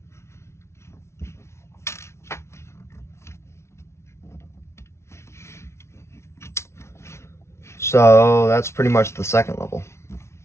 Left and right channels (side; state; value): right; late; 0.13 ms